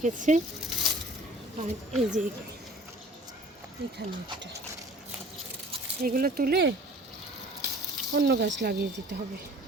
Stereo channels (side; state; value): both; normal; correlation 0.48